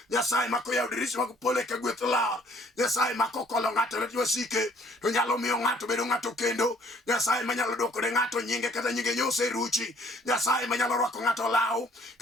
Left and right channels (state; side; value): normal; both; correlation 0.60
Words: nyasaye mako yaro dirisha mag pole ka gweth lar, nyasaye mako kolo ng'ato lwet wasike, to nyalo miyo ng'ato bedo ng'ato kendo, nyasaye manyalo dwoko ne ng'ato nyinge kata nyinge nyose ruchi, nyasaye manyalo rwako ng'ato law